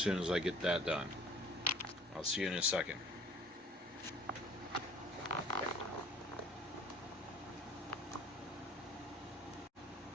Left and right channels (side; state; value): both; normal; correlation 0.51